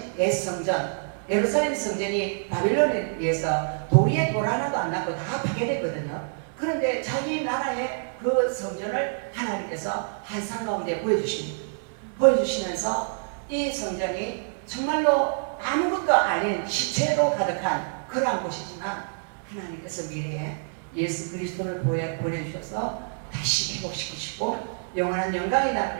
옛성전, 예루살렘 성전이 바벨론에 의해서 도리에 돌 하나도 안 남고 다 파괴됐거든요. 그런데 자기 나라의 그 성전을 하나님께서 한상 가운데 보여주시면서 이 성전이 정말로 아무것도 아닌 시체로 가득한 그러한 곳이지만 하나님께서 미래에 예수 그리스도를 보내주셔서 다시 회복시키시고 영원한 영광의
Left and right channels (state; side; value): silent; left; digital silence